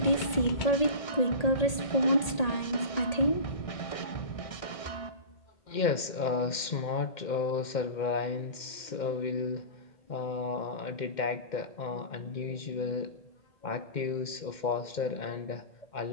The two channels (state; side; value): late; right; 2.1 ms